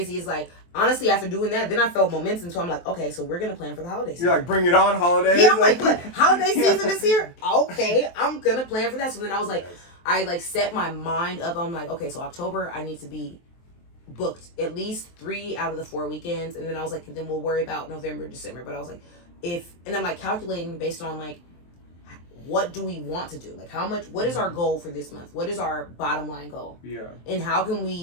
is, like, honestly, after doing that, then I felt momentum. So I'm like, okay, so we're going to plan for the holiday season. You're like, bring it on, holidays. Yeah, I'm like, what? Holiday season is here? Okay, I'm going to plan for that. So then I was like, I like set my mind up. I'm like, okay, so October, I need to be booked at least 3 out of the 4 weekends. And then I was like, then we'll worry about November, December. But I was like, and I'm like calculating based on like, what do we want to do? Like, what is our goal for this month? What is our bottom line goal? Yeah. And how can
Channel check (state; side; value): late; right; 23 ms